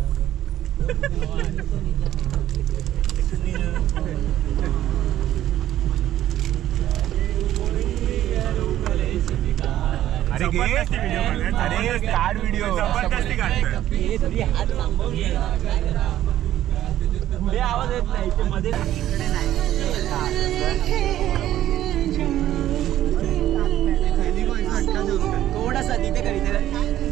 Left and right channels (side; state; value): left; quieter; 12.8 dB